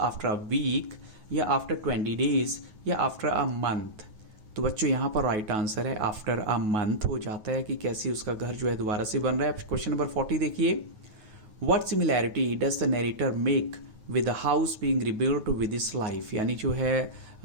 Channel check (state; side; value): late; left; 9.3 ms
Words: a week, या आफ्टर 20 डेज, या आफ्टर अ मंथ। तो बच्चों यहाँ पर राइट आंसर है आफ्टर अ मंथ हो जाता है, कि कैसे उसका घर जो है दोबारा से बन रहा है। क्वेश्चन नंबर 40 देखिए, what similarity does the narrator make with the house being rebuilt with his life, यानी जो है